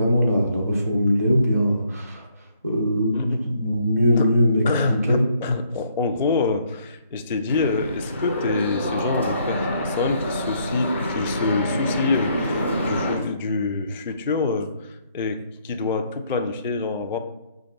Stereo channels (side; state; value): both; inverted; correlation -0.69